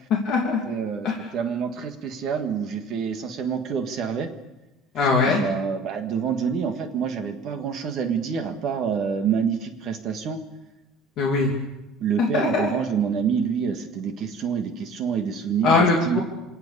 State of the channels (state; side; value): normal; both; correlation 0.45